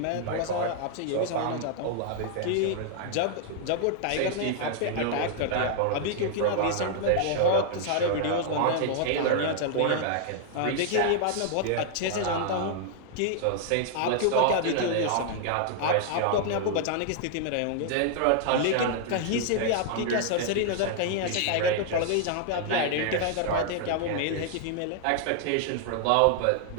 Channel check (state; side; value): different; both; correlation 0.00